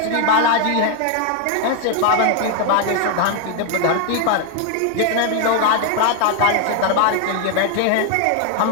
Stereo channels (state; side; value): different; both; correlation 0.00